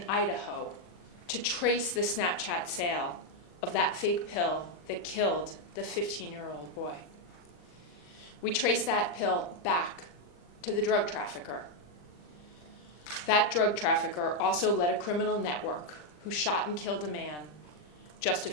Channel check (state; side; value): late; right; 40 ms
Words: Idaho to trace the Snapchat sale of that fake pill that killed the 15-year-old boy. We traced that pill back to the drug trafficker. That drug trafficker also led a criminal network who shot and killed a man just a